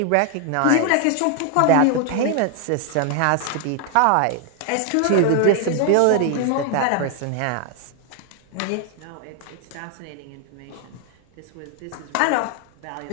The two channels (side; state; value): both; different; correlation 0.00